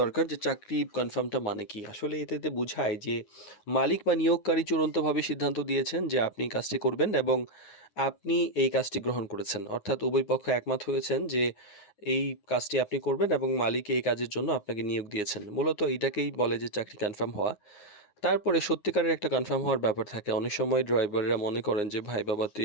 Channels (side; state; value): right; late; 9.6 ms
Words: দরকার যে চাকরি কনফার্মটা মানে কি। আসলে এটাতে বোঝায় যে মালিক বা নিয়োগকারী চূড়ান্তভাবে সিদ্ধান্ত দিয়েছেন যে আপনি কাজটি করবেন এবং আপনি এই কাজটি গ্রহণ করেছেন। অর্থাৎ উভয় পক্ষ একমত হয়েছেন যে এই কাজটি আপনি করবেন এবং মালিক এই কাজের জন্য আপনাকে নিয়োগ দিয়েছেন। মূলত এটাকেই বলে যে চাকরি কনফার্ম হওয়া। তারপরে সত্যিকারের একটা কনফার্ম হওয়ার ব্যাপার থাকে। অনেক সময় ড্রাইভাররা মনে করেন যে ভাই বাবা